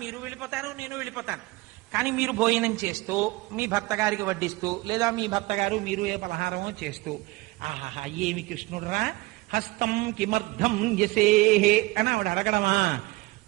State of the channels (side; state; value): left; quieter; 21.5 dB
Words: మీరు వెళ్ళిపోతారు, నేను వెళ్ళిపోతాను. కానీ మీరు భోజనం చేస్తూ మీ భర్త గారికి వడ్డిస్తూ, లేదా మీ భర్త గారు మీరు ఏ పలహారమో చేస్తూ, ఆహాహా ఏమి కృష్ణుడురా, హస్తం కిమర్థం యసేహే అని ఆవిడ అడగడమా,